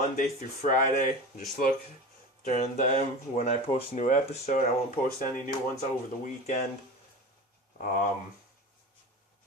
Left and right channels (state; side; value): normal; both; correlation 0.30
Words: through Friday. Just look during them when I post a new episode. I won't post any new ones over the weekend. After